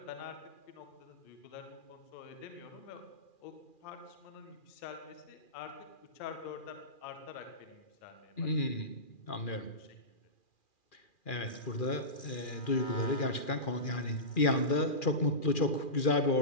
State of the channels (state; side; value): late; right; 2.4 ms